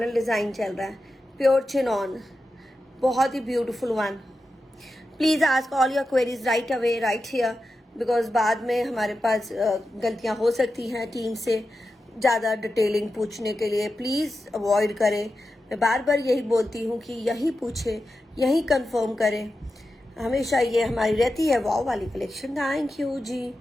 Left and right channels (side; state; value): both; normal; correlation 0.91